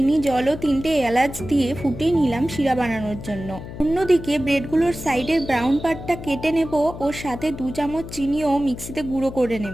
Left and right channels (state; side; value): noise; left; hum, 11 dB below the sound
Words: জল ও 3টে এলাচ দিয়ে ফুটিয়ে নিলাম শিরা বানানোর জন্য। অন্যদিকে ব্রেডগুলোর সাইডের ব্রাউন পার্টটা কেটে নেব ও সাথে 2 চামচ চিনিও মিক্সিতে গুঁড়ো করে